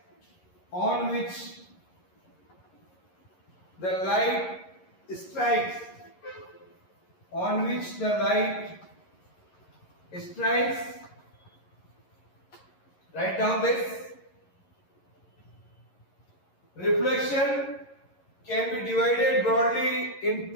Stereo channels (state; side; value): late; right; 11 ms